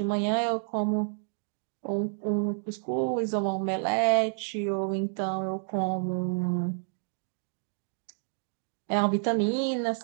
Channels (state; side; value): silent; left; 58 dB below the other